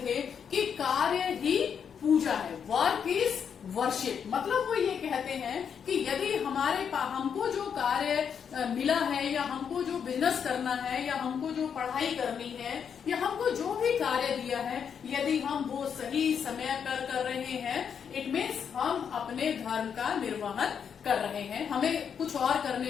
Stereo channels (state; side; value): quieter; right; 7.4 dB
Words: थे कि कार्य ही पूजा है, वर्क इज वर्शिप। मतलब वो ये कहते हैं कि यदि हमको जो कार्य मिला है या हमको जो बिजनेस करना है या हमको जो पढ़ाई करनी है या हमको जो भी कार्य दिया है, यदि हम वो सही समय पर कर रहे हैं, इट मीन्स हम अपने धर्म का निर्वहन कर रहे हैं, हमें कुछ और